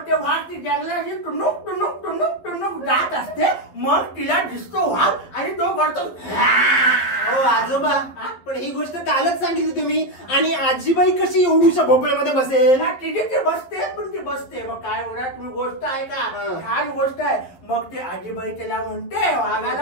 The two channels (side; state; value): right; late; 11 ms